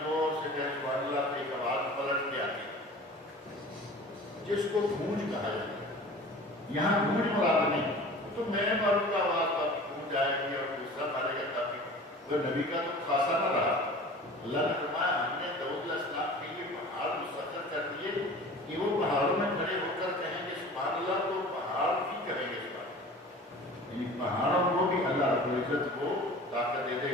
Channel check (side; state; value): both; normal; correlation 0.41